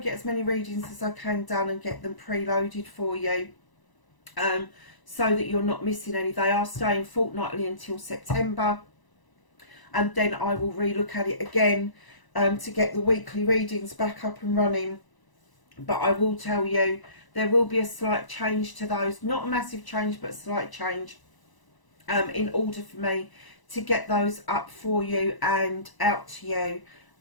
get as many readings as I can done and get them preloaded for you, so that you're not missing any. They are staying fortnightly until September. And then I will relook at it again to get the weekly readings back up and running. But I will tell you, there will be a slight change to those. Not a massive change, but a slight change in order for me to get those up for you and out to you,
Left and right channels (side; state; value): right; late; 1.0 ms